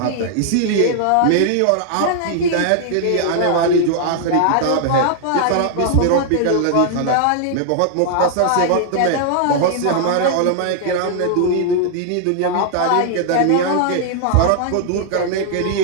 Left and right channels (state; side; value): different; both; correlation -0.01